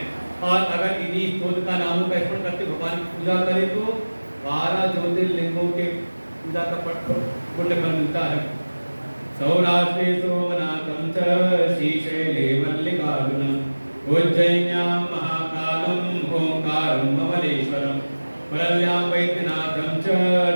और अगर इन्हीं स्तोत्र का नामों का स्मरण करते भगवान की पूजा करे तो 12 ज्योतिर्लिंगों के पूजा का पुण्य फल मिलता है। सौराष्ट्रे सोमनाथं च श्रीशैले मल्लिकार्जुनम् उज्जयिन्यां महाकालं ओंकारं ममलेश्वरं परल्यां वैद्यनाथं च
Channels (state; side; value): inverted; both; correlation -1.00